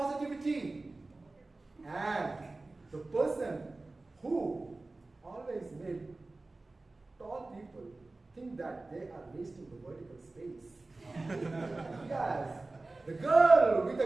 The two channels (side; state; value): left; quieter; 3.2 dB